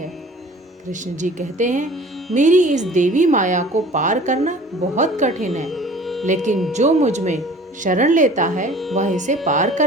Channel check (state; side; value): normal; both; correlation 0.47